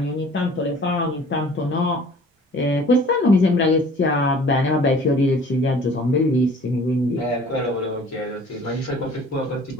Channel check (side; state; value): both; normal; correlation 0.50